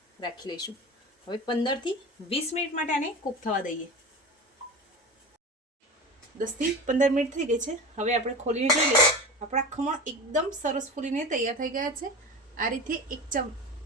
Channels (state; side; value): normal; both; correlation 0.30